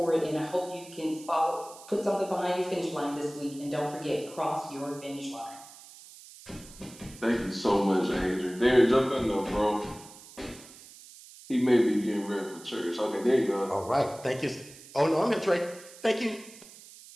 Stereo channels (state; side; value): noise; right; hiss, 19 dB below the sound